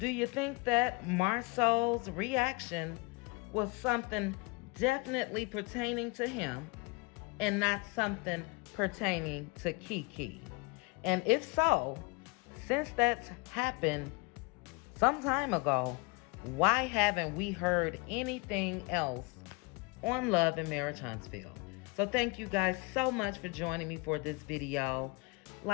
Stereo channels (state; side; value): quieter; right; 28.3 dB